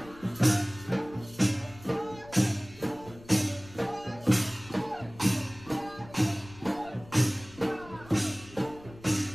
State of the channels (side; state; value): left; noise; rumble, 20 dB below the sound